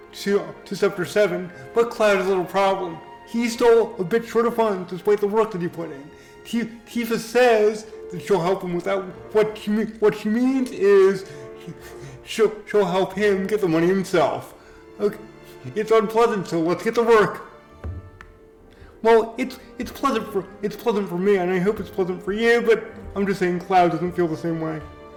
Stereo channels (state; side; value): identical; both; correlation 1.00